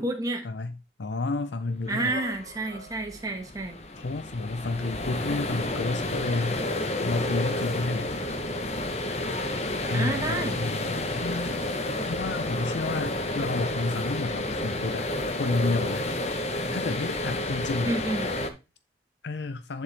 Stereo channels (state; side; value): normal; both; correlation 0.46